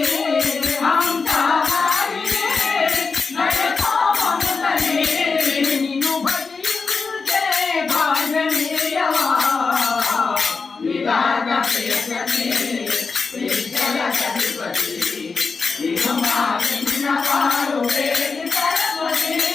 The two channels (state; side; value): quieter; right; 4.7 dB